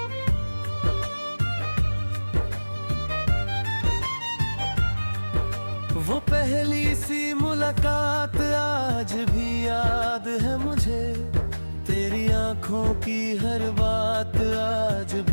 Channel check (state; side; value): inverted; both; correlation -1.00